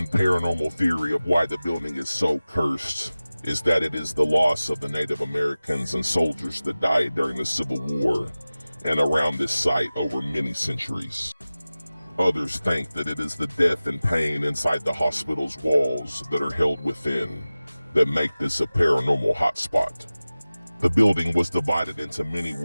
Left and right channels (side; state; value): both; inverted; correlation -0.97